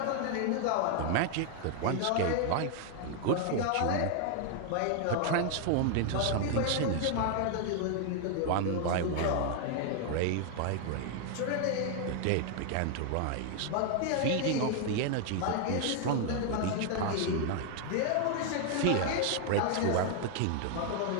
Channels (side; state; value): both; different; correlation 0.00